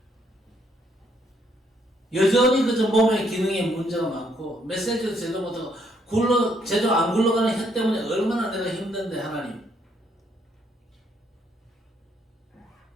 여전히 그저 몸의 기능에 문제가 많고 메시지도 제대로 못하고 제대로 안 굴러가는 혀 때문에 얼마나 내가 힘든데 하나님.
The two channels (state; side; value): normal; both; correlation 0.71